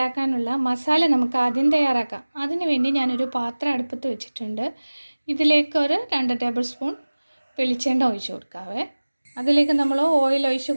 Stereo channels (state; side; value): inverted; both; correlation -1.00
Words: മസാല നമുക്ക് ആദ്യം തയ്യാറാക്കാം. അതിനു വേണ്ടി ഞാനൊരു പാത്രം അടുപ്പത്ത് വെച്ചിട്ടുണ്ട്. ഇതിലേക്ക് ഒരു 2 ടേബിൾ സ്പൂൺ വെളിച്ചെണ്ണ ഒഴിച്ച് കൊടുക്കാവേ. അതിലേക്ക് നമ്മൾ ഓയിൽ ഒഴിച്ച്